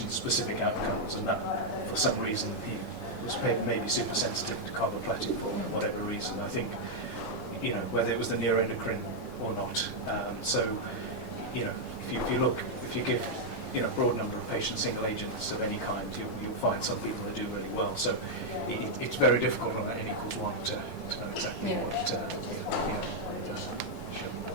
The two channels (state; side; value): normal; both; correlation -0.02